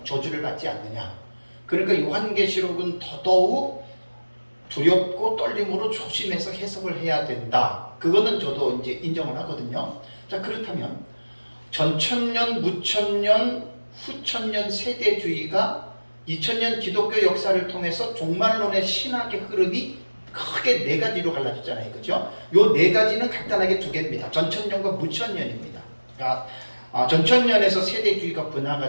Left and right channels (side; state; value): both; inverted; correlation -1.00